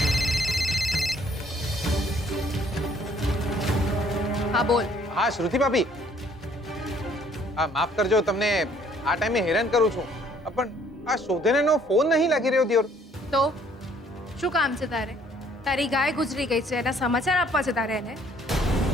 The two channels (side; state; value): both; normal; correlation 0.61